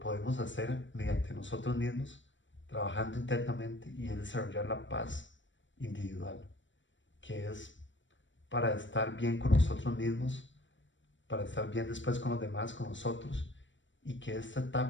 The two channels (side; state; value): right; late; 0.55 ms